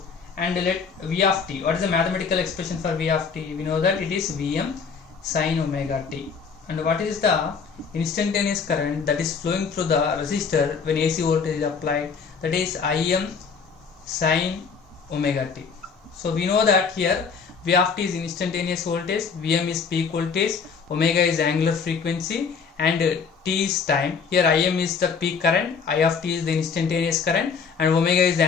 And let V of t, what is the mathematical expression for V of t? We know that it is Vm sin omega t. And what is the instantaneous current that is flowing through the resistor when AC voltage is applied? That is Im sin omega t. So we know that here V of t is instantaneous voltage, Vm is peak voltage, omega is angular frequency, and t is time. Here Im is the peak current, I of t is the instantaneous current, and omega is the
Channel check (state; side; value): quieter; right; 5.8 dB